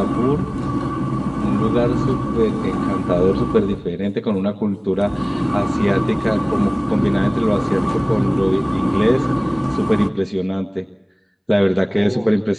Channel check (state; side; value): identical; both; correlation 1.00